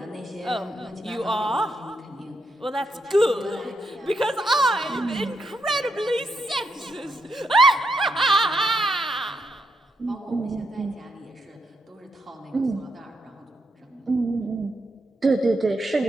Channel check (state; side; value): normal; both; correlation 0.81